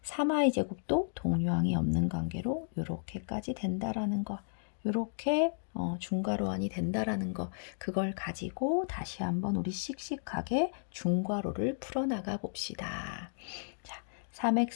3y제곱도 동류항이 없는 관계로 이렇게까지 된다라는 거. 이렇게 중괄호안이 된다라는 거. 그걸 가지고 다시 한번 우리 씩씩하게 중괄호를 풀어나가 봅시다. 자,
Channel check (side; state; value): right; silent; digital silence